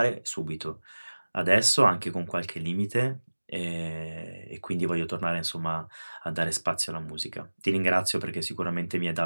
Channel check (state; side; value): inverted; both; correlation -1.00